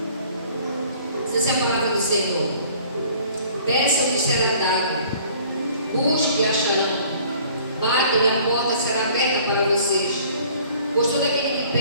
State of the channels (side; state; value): both; inverted; correlation -0.53